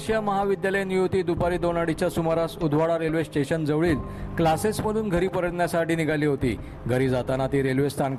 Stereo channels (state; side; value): identical; both; correlation 1.00